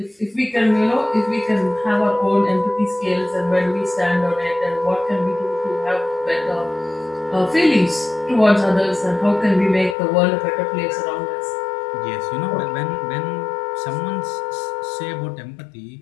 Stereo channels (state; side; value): drops out; right; at 10.0 s